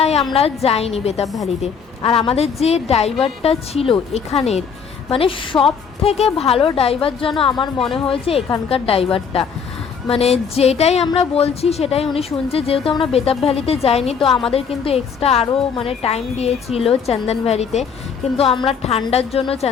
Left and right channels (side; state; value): right; quieter; 6.4 dB